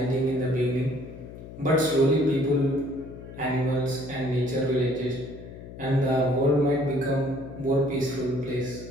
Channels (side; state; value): left; noise; hum, 14 dB below the sound